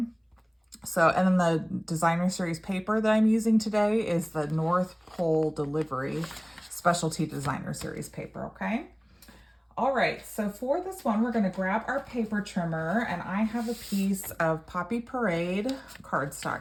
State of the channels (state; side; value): identical; both; correlation 1.00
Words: So, and then the designer series paper that I'm using today is the North Pole Delivery Specialty Designer Series paper, okay? All right, so for this one, we're gonna grab our paper trimmer, and I have a piece of Poppy Parade